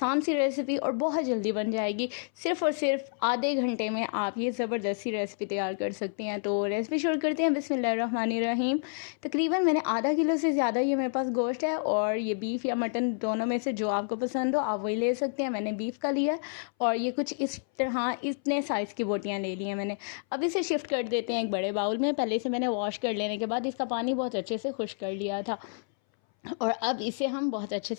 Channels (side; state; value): right; silent; 58 dB below the other